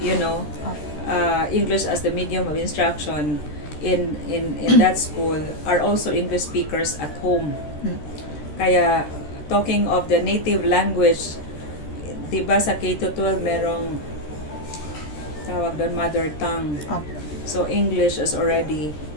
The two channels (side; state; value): right; late; 13 ms